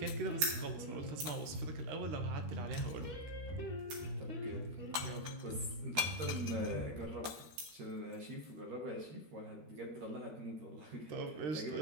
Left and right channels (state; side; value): late; left; 13 ms